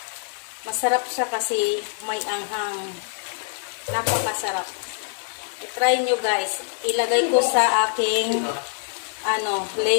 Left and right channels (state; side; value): silent; right; 62 dB below the other